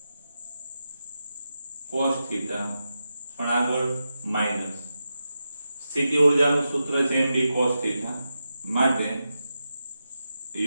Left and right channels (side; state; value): both; inverted; correlation -0.89